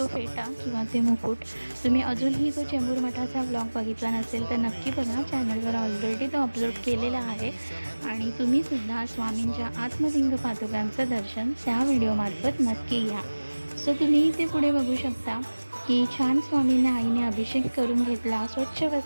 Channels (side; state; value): both; inverted; correlation -1.00